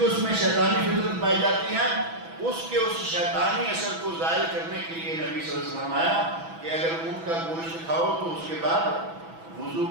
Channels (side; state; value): left; late; 6.1 ms